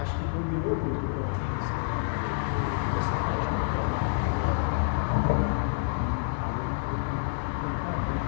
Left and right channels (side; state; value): right; silent; digital silence